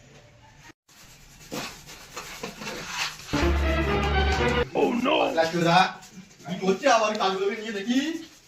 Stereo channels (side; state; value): both; identical; correlation 1.00